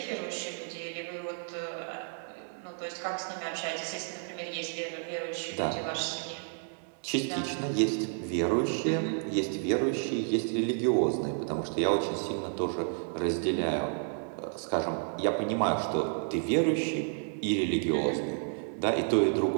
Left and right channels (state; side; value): silent; left; 57 dB below the other